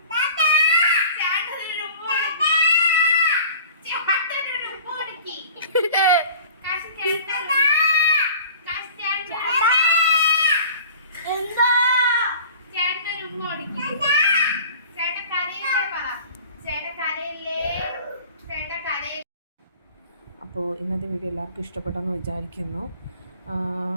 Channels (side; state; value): both; inverted; correlation -0.44